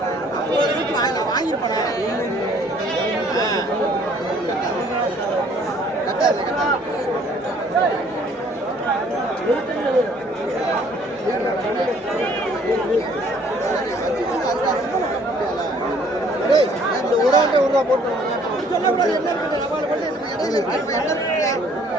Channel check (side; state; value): both; normal; correlation 0.59